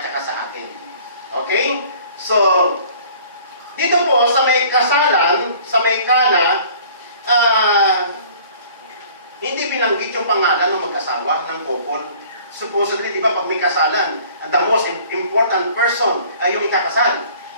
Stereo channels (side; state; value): both; inverted; correlation -0.51